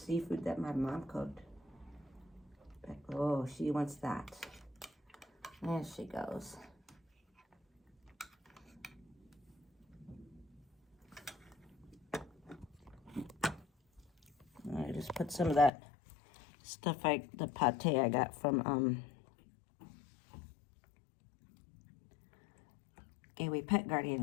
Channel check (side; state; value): right; drops out; at 15.7 s